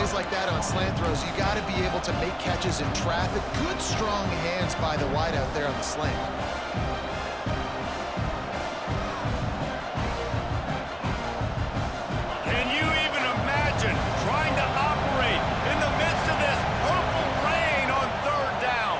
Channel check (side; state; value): both; identical; correlation 1.00